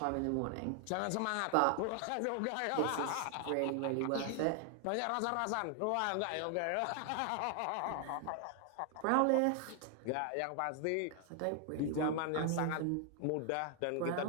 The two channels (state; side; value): different; both; correlation 0.00